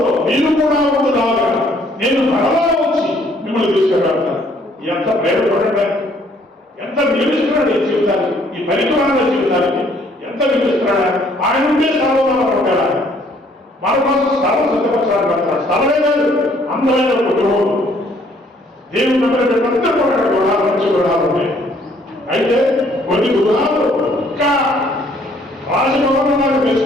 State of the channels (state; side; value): normal; both; correlation 0.63